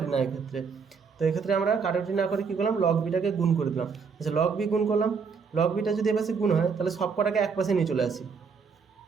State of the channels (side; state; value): left; quieter; 5.6 dB